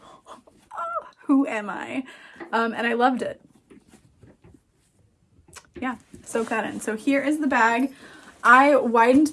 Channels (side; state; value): both; identical; correlation 1.00